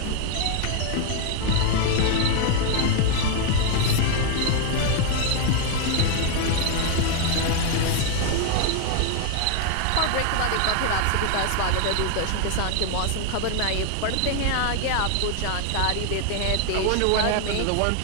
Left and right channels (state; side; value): different; both; correlation 0.00